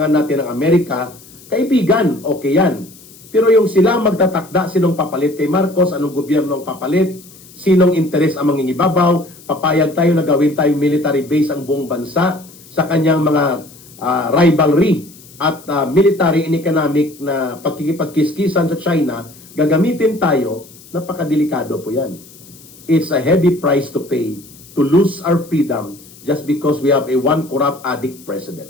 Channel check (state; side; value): noise; left; hiss, 22 dB below the sound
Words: natin ng Amerika, kaibigan, okay yan. Pero yung sila magtatakda, sinong papalit kay Marcos, anong gobyerno ang papalit, sinong interes ang mangingibabaw, papayag tayo na gawin tayong military base ang buong bansa sa kanyang mga rivalry at military and economic na pagkikipagkiskisan sa China, gagamitin tayo, napakadelikado po yan. It's a heavy price to pay to lose our freedom just because we have a one corrupt addict